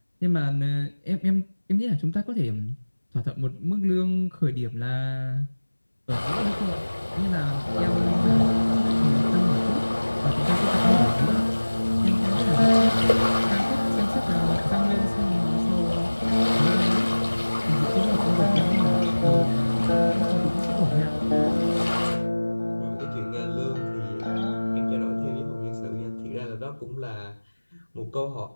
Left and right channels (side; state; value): both; inverted; correlation -1.00